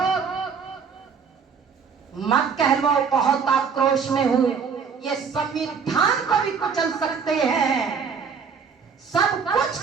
मत कह लो बहुत आक्रोश में हूं, ये संविधान को भी कुचल सकते हैं, सब कुछ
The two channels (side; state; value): left; quieter; 6.0 dB